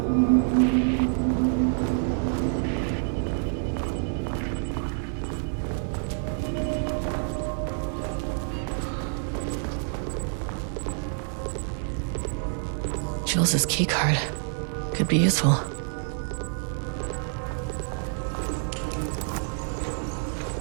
Jules's keycard. Could be useful.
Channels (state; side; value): silent; left; 60 dB below the other